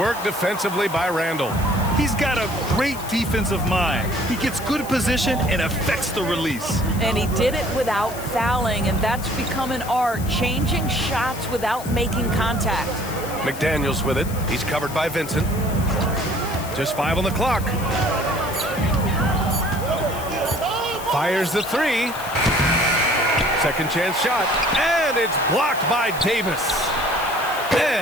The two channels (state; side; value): noise; left; hiss, 13 dB below the sound